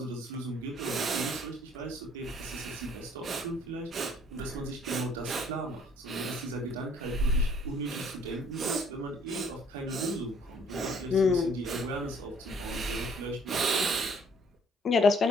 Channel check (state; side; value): normal; both; correlation 0.60